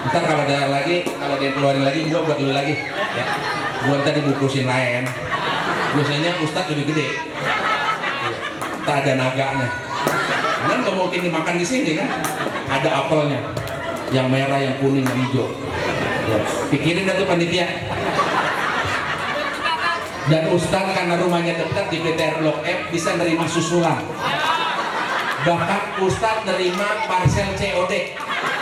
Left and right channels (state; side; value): identical; both; correlation 1.00